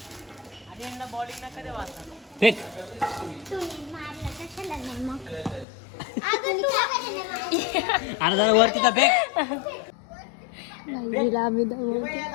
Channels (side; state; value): right; drops out; at 5.7 s